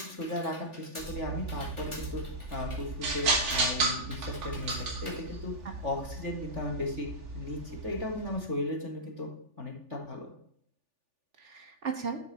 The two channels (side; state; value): left; late; 3.4 ms